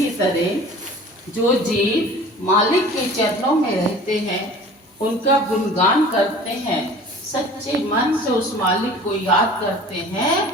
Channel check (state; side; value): normal; both; correlation 0.44